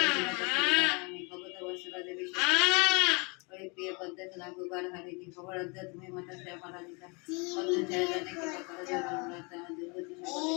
ভগত বৎসলা দেবী প্রিয় পদ্মে নাগুবার হারিণী খবরাধ্যা তুমি মাতা শ্যামলা দিতা পদ্ম ছায়া জানে কি করা যাবে দুর্গতি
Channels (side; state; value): right; quieter; 30.9 dB